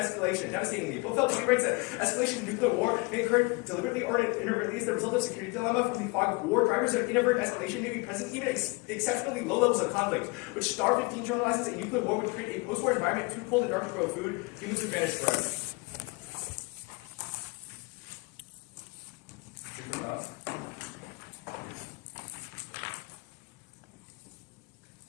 Devastatingly, Bofeld writes that escalation of nuclear war may occur deliberately or inadvertently as the result of security dilemma from the fog of war. Drivers of inadvertent escalation may be present even at exceptionally low levels of conflict, which Star 15 terminalizes a nuclear war would create a post-war environment too cold and dark to grow food, humans advantage forever.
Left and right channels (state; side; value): quieter; right; 27.6 dB